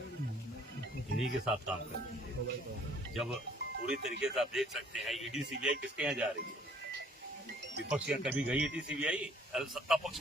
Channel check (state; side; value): normal; both; correlation 0.59